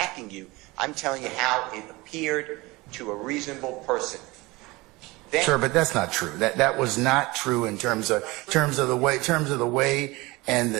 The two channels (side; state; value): left; quieter; 22.3 dB